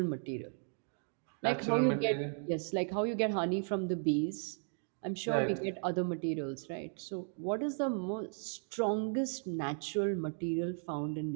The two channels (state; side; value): silent; left; 54 dB below the other